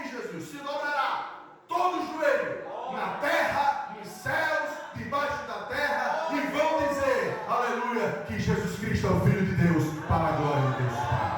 de Jesus, se dobrará todo joelho, na terra, nos céus, debaixo da terra, e vão dizer, aleluia, que Jesus Cristo é o Filho de Deus, para a glória de Deus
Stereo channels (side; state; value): both; identical; correlation 1.00